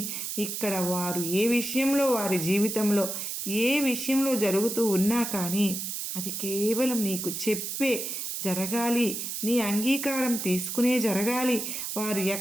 ఇక్కడ వారు ఏ విషయంలో వారి జీవితంలో ఏ విషయంలో జరుగుతూ ఉన్నా కానీ అది కేవలం నీకు చెప్పే జరగాలి. నీ అంగీకారం తీసుకునే జరగాలి. వారు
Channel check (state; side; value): noise; right; hiss, 4 dB below the sound